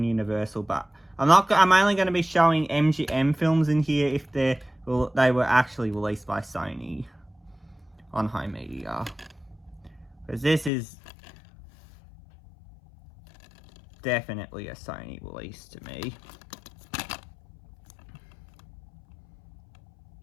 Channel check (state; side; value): drops out; right; at 10.7 s